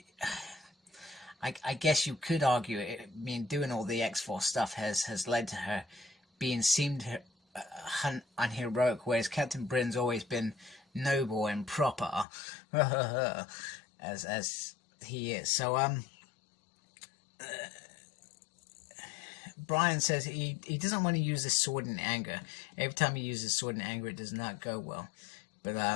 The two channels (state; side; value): drops out; right; at 12.2 s